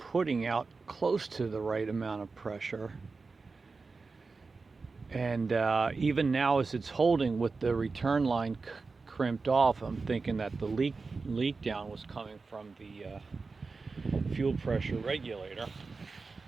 out close to the right amount of pressure. And even now, as it's holding with the return line crimped off, I'm thinking that the leak down was coming from the fuel pressure regulator.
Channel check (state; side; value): quieter; left; 4.2 dB